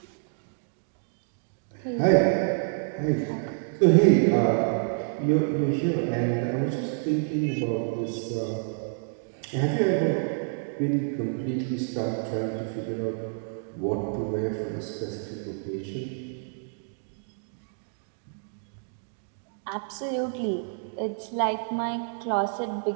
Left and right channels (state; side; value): silent; left; digital silence